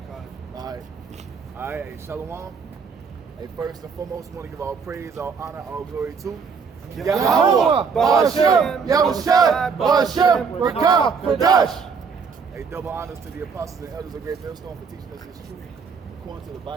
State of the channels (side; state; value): left; quieter; 5.6 dB